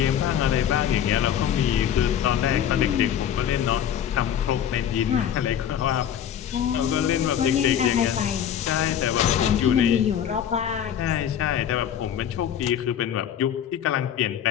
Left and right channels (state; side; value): quieter; right; 9.5 dB